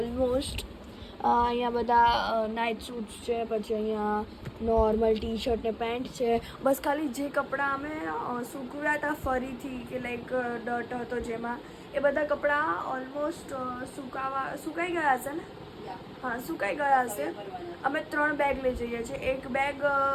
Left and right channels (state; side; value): identical; both; correlation 1.00